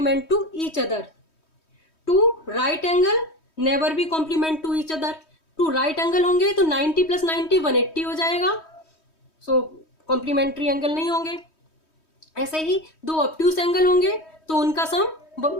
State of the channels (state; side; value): late; right; 3.2 ms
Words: to each other. Two right angle never be complement to each other. Two right angle होंगे तो 90 प्लस 90 180 हो जाएगा. सो कॉम्प्लीमेंट्री एंगल नहीं होंगे. ऐसे ही दो ऑब्ट्यूस एंगल होंगे तो उनका सम